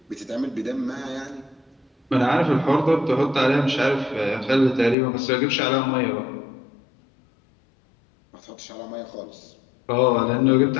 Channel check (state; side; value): drops out; right; at 5.0 s